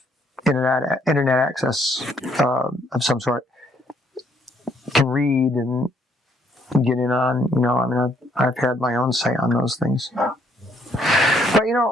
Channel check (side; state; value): both; normal; correlation 0.69